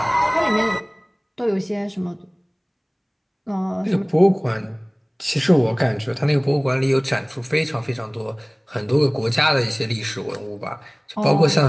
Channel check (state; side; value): identical; both; correlation 1.00